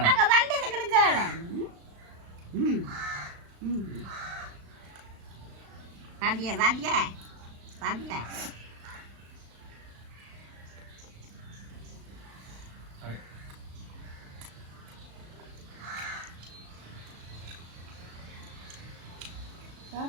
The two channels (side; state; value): left; late; 36 ms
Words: அங்கே வந்தது கிடக்கால ம் ம் பாத்தியா பாத்தியா பாத்தியா